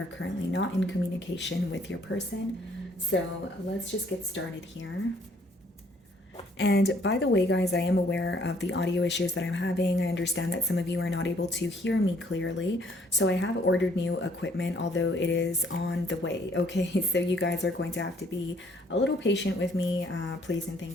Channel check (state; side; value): normal; both; correlation 0.63